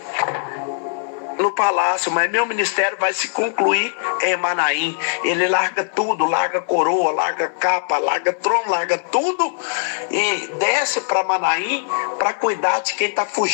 no palácio, mas meu ministério vai se concluir em Manaim. Ele larga tudo, larga coroa, larga capa, larga trono, larga tudo e desce para Manaim para cuidar de quem está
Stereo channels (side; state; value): right; silent; digital silence